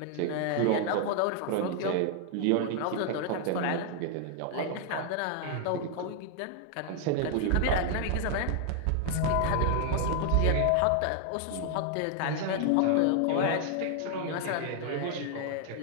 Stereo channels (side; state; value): both; different; correlation 0.00